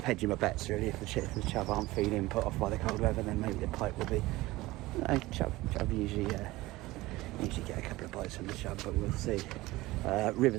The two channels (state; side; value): quieter; left; 19.1 dB